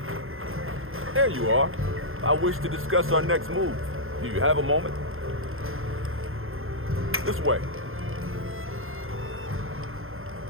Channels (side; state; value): left; late; 0.60 ms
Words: There you are. I wish to discuss our next move. Do you have a moment? This way.